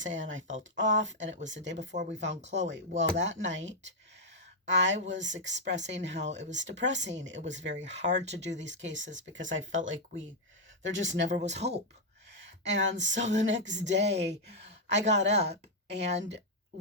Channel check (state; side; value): normal; both; correlation -0.01